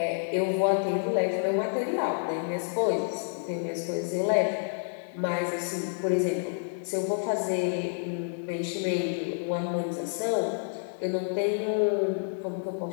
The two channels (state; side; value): silent; right; digital silence